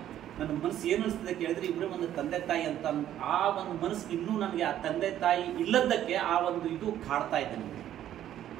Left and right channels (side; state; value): left; quieter; 11.6 dB